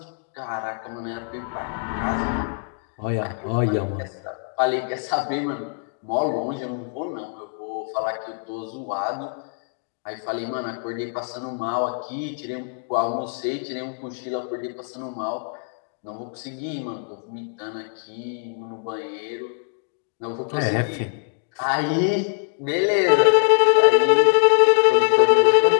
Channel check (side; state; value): right; silent; 63 dB below the other